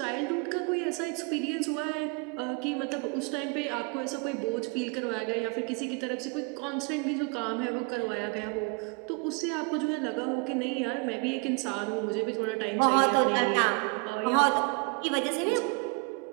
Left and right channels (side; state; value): left; quieter; 32.3 dB